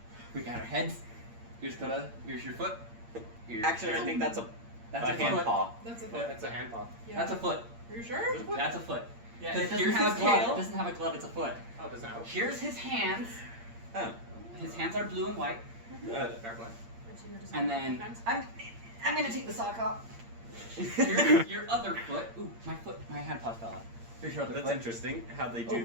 We got our heads. Here's Coda. Here's your foot. Here's Actually, I think that's a hand foot. paw. That's a foot. Yeah, that's a hand paw. Yeah. That's a foot. Are you sure? That's a foot. Yeah, Because it doesn't here's have his a glove. tail. It doesn't have a glove. It's a foot. Oh, it doesn't have. Here's his hands. Oh. His hands are blue and white. Fair play. And then I'm gonna take the sock off. Here's your other foot. Ooh, my hand paw fell out. Here's your other That's foot. interesting how they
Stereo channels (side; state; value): left; late; 8.7 ms